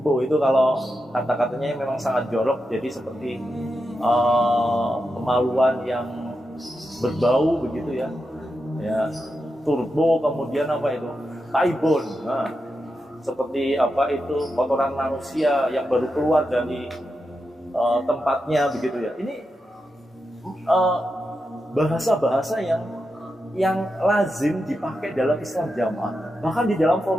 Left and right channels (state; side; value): normal; both; correlation 0.88